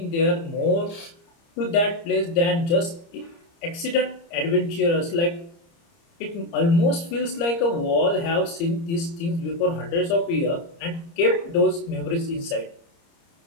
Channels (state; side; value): late; right; 30 ms